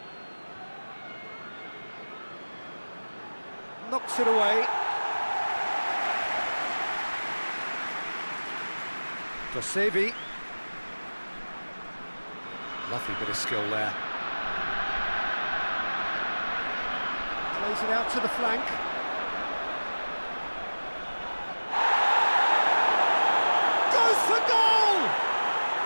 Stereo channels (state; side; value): inverted; both; correlation -1.00